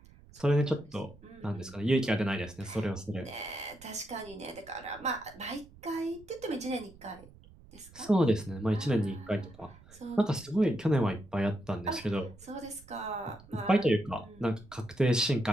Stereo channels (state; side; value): noise; right; rumble, 23 dB below the sound